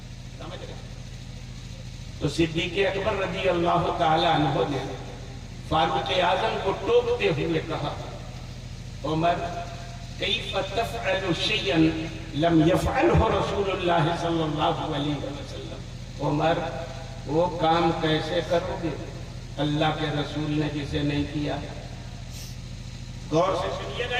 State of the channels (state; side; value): identical; both; correlation 1.00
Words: سمجھ رہے. تو صدیق اکبر رضی اللہ تعالی عنہ نے فاروق اعظم کو ٹوکتے ہوئے کہا، عمر کیف تفعل شیئا لم یفعلہ رسول اللہ صلی اللہ علیہ وسلم. عمر وہ کام کیسے کرو گے اللہ کے رسول نے جسے نہیں کیا. غور سے سنیے گا